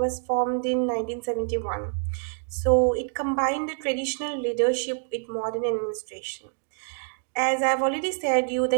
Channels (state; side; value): silent; left; 61 dB below the other